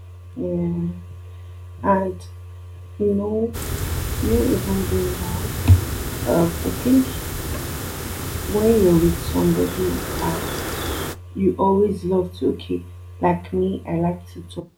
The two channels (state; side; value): identical; both; correlation 1.00